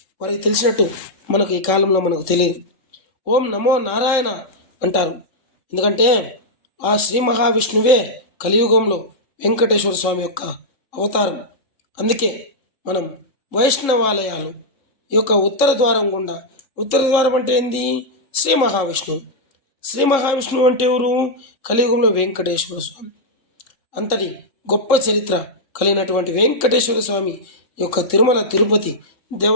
వారికి తెలిసినట్టు మనకు ఈ కాలంలో మనకు తెలియదు. ఓం నమో నారాయణ అంటారు, ఎందుకంటే ఆ శ్రీ మహావిష్ణువే కలియుగంలో వెంకటేశ్వర స్వామి యొక్క అవతారం. అందుకే మనం వైష్ణవాలయాలు ఈ యొక్క ఉత్తర ద్వారం గుండా, ఉత్తర ద్వారం అంటే ఏంది, శ్రీ మహావిష్ణువు. శ్రీ మహావిష్ణువు అంటే ఎవరు, కలియుగంలో వెంకటేశ్వర స్వామి. అంతటి గొప్ప చరిత్ర కలిగినటువంటి వెంకటేశ్వర స్వామి యొక్క తిరుమల తిరుపతి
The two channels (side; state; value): right; late; 3.7 ms